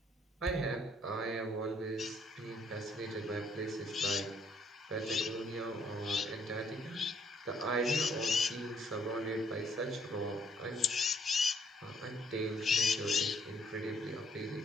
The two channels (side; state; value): both; normal; correlation 0.67